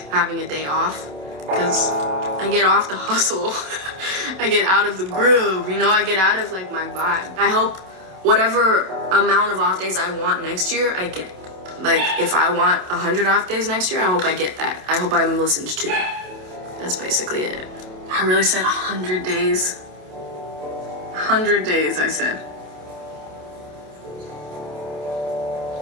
having a day off, because I get off the hustle. I get out of the groove, I get out of my vibe. I hope whatever amount of off days I want next year, I get. If I want 100 off days next year, I hope I get that. I hope I'm listened to. That's basically it. I really said 100 days. 100 days, I said.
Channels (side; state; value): left; late; 27 ms